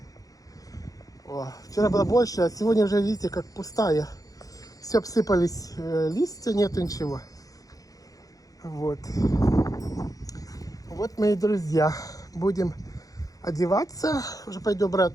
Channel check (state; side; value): late; right; 0.17 ms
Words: Вчера было больше, а сегодня уже, видите, как пустая. Все обсыпались листья, нету ничего. Вот. Вот, мои друзья, будем одеваться. Уже пойду